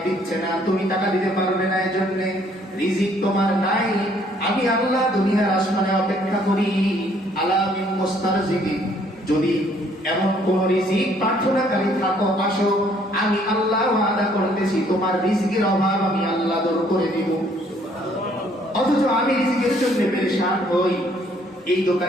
দিচ্ছে না, তুমি টাকা দিতে পারবে না, এজন্য রিজিক তোমার নাই, আমি আল্লাহ দুনিয়ার আসমানে অপেক্ষা করি। আলা মিন মুস্তারজিকিন, যদি এমন কোন রিজিক প্রার্থনাকারী থাকো, আসো, আমি আল্লাহ ওয়াদা করতেছি তোমার রিজিকের অভাব আমি আল্লাহ দূর করে দিব। অথচ আমি রিজিকের জন্য পেরেশান হই, এই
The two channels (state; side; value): normal; both; correlation 0.63